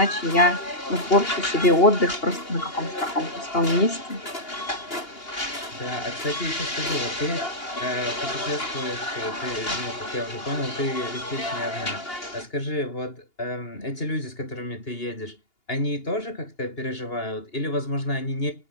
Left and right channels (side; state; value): right; late; 2.8 ms